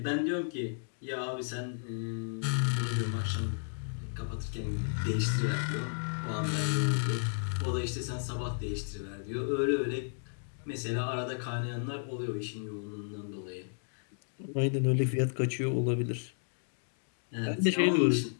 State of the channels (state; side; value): silent; right; digital silence